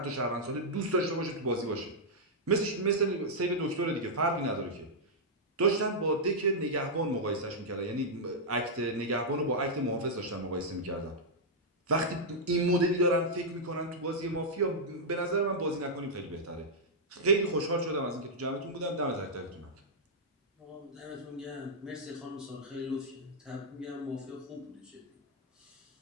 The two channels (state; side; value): normal; both; correlation -0.07